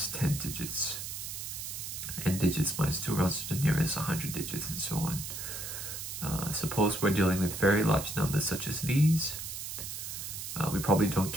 10 digits. N digits minus 2 rounds to the nearest 100 digits, and so on. Suppose we're dealing with very large numbers such as these. We probably don't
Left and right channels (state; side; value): noise; right; hiss, 7 dB below the sound